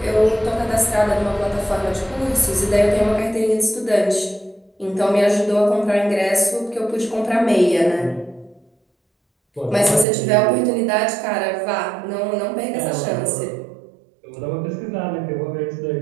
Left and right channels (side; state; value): left; drops out; at 10.1 s